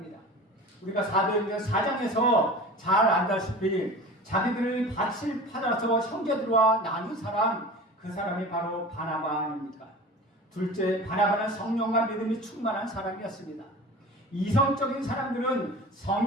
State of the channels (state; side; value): normal; both; correlation 0.37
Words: 우리가 사도행전 4장에서 잘 안다시피 자기들을 밭을 팔아서 형제들과 나눈 사람, 그 사람이 바로 바나바 아닙니까? 둘째, 바나바는 성령과 믿음이 충만한 사람이었습니다. 이성적인 사람들은